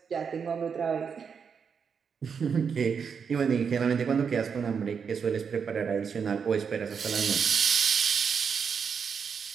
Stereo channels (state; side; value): quieter; left; 6.4 dB